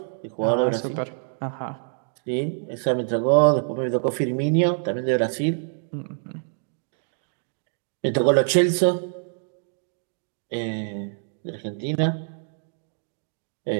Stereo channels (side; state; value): left; silent; digital silence